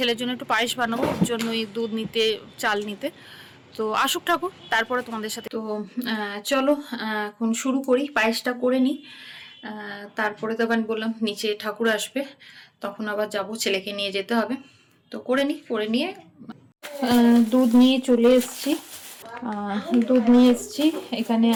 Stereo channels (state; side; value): identical; both; correlation 1.00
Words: জন্য একটু পায়েস বানাবো, ওর জন্যই দুধ নিতে, চাল নিতে। তো আসুক ঠাকুর, তারপরে তোমাদের সাথে। তো চলো এখন শুরু করি, পায়েসটা করে নিই। তারপরে তো আমি বললাম নিচে ঠাকুর আসবে, তখন আবার যাব, ছেলেকে নিয়ে যেতে হবে। তো করে নিয়ে দুধ নিয়ে চলে এসছি। এখানে